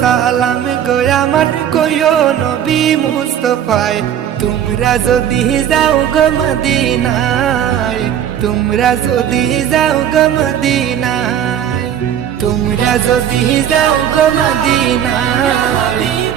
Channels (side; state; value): left; quieter; 9.8 dB